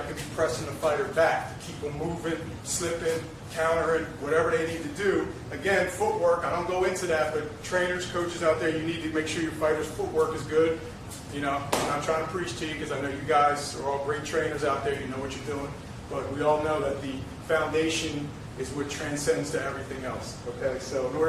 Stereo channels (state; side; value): identical; both; correlation 1.00